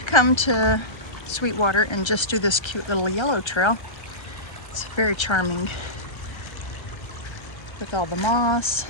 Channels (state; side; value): late; right; 1.3 ms